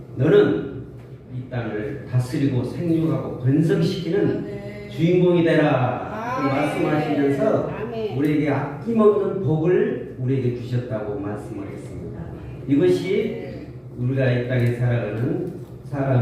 너는 이 땅을 다스리고 생육하고 번성시키는 주인공이 되라 말씀하시면서 우리에게 아낌없는 복을 우리에게 주셨다고 말씀을 했습니다. 이것이 우리가 이 땅에 살아가는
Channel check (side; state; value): both; identical; correlation 1.00